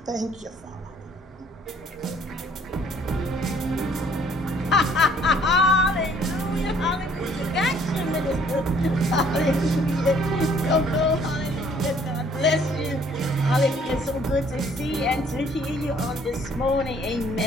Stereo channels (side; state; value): both; normal; correlation 0.60